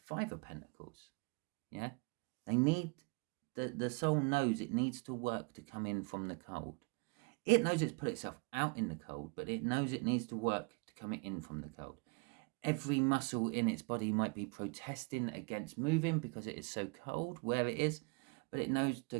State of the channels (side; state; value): left; quieter; 33.1 dB